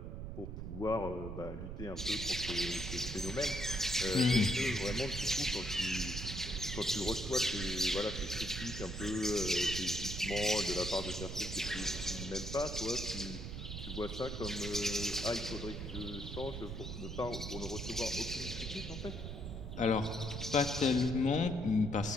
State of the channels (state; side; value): noise; right; rumble, 6 dB below the sound